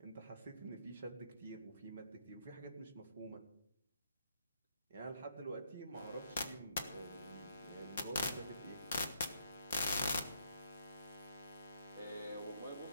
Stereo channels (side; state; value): both; inverted; correlation -0.73